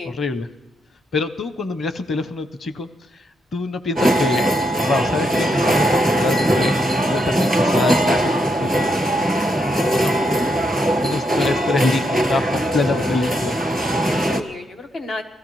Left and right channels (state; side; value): normal; both; correlation 0.79